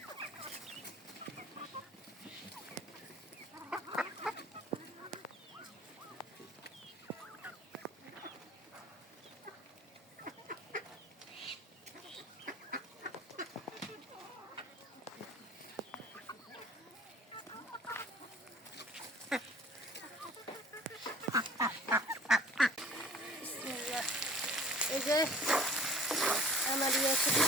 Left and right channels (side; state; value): both; normal; correlation 0.46